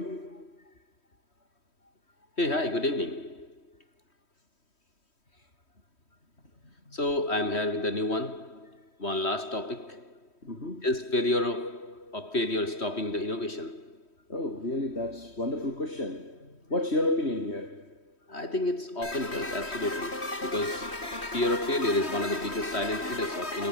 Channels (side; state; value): right; late; 3.1 ms